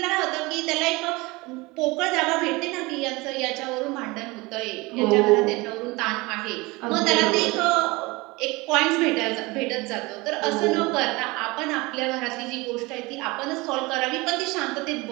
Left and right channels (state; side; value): quieter; left; 23.4 dB